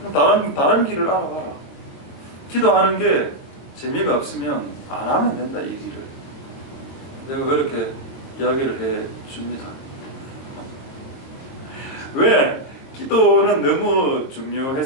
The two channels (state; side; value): late; right; 22 ms